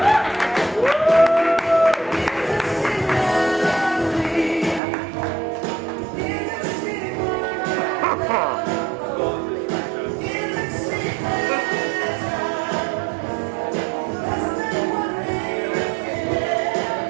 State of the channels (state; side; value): drops out; left; at 4.8 s